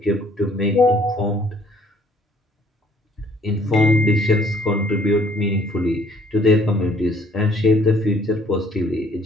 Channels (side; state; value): both; normal; correlation 0.62